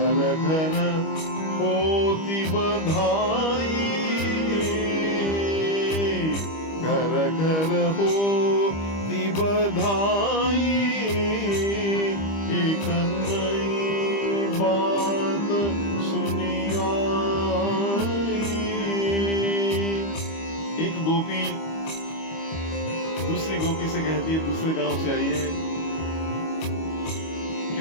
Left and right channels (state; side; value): late; right; 25 ms